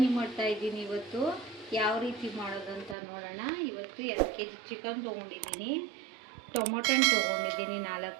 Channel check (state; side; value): drops out; left; at 3.0 s